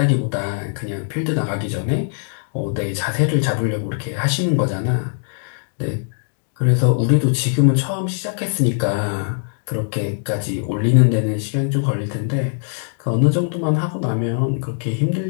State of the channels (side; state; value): right; silent; digital silence